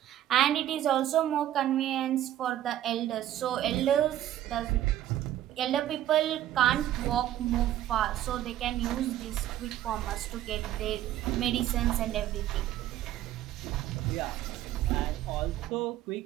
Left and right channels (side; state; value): left; quieter; 12.7 dB